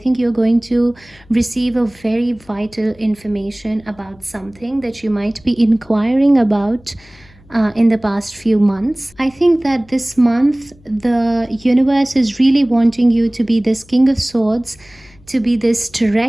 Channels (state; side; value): noise; left; hum, 27 dB below the sound